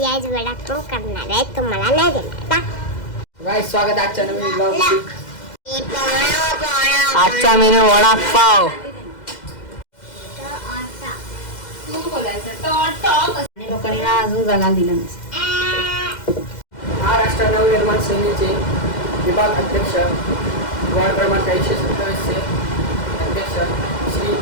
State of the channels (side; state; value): right; late; 2.0 ms